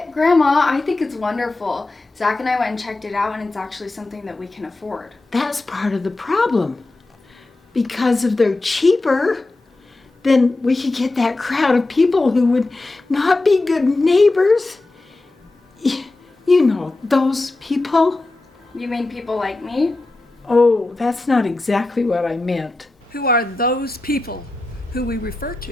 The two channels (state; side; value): quieter; right; 3.0 dB